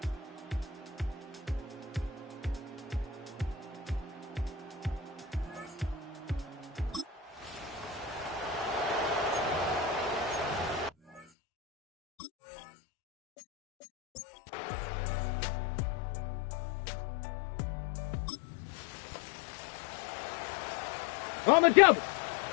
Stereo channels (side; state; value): right; drops out; at 11.2 s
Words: On the double.